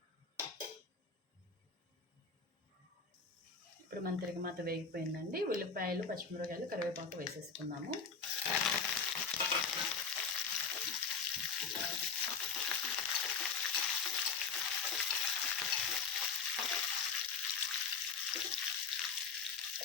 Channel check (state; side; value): quieter; right; 5.3 dB